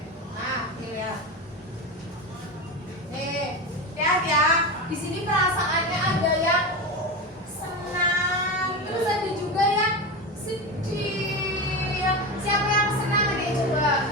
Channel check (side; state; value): both; normal; correlation 0.20